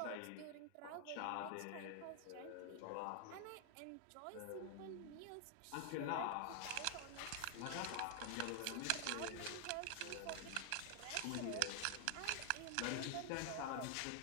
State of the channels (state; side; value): different; both; correlation 0.00